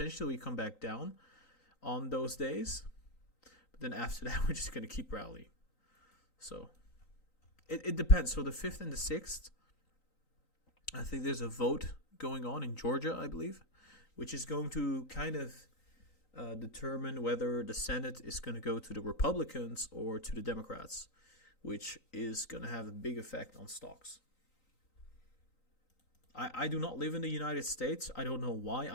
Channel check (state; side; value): late; right; 3.9 ms